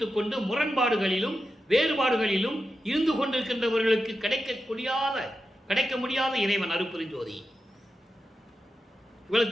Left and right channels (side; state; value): both; normal; correlation 0.90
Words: கொண்டு முரண்பாடுகளிலும் வேறுபாடுகளிலும் இருந்து கொண்டிருக்கின்றவர்களுக்கு கிடைக்க முடியாத இறைவன் அருப்பெருஞ்சோதி. இவ்வளவு